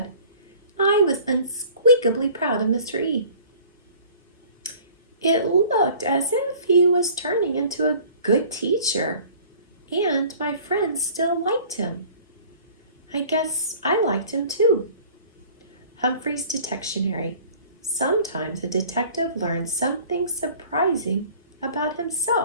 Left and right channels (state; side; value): inverted; both; correlation -0.49